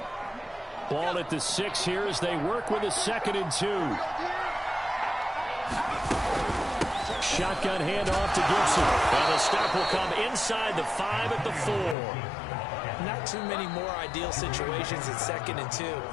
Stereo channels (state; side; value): drops out; right; at 12.0 s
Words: Ball at the 6 here as they work with a 2nd and 2. Shotgun handoff to Gibson. And the stop will come inside the 5 at the 4. Not too many more ideal situations at 2nd and 2